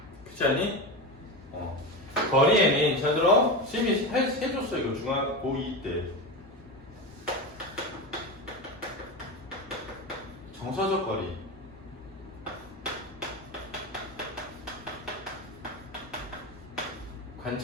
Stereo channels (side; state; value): both; normal; correlation 0.21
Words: 그렇지 않니? 거리에는 저들어 쌤이 해줬어. 이거 중학 고2 때 정서적 거리,